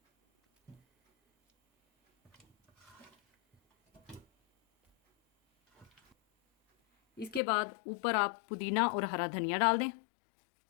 इसके बाद ऊपर आप पुदीना और हरा धनिया डाल दें।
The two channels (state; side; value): drops out; right; at 7.4 s